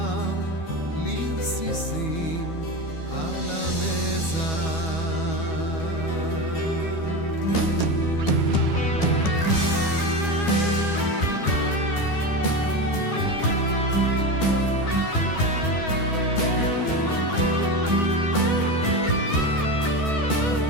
לרסיסים על המזח.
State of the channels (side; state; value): right; late; 12 ms